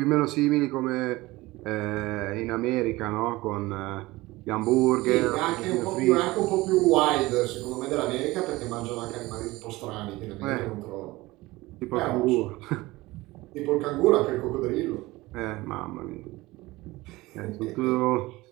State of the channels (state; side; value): quieter; left; 20.0 dB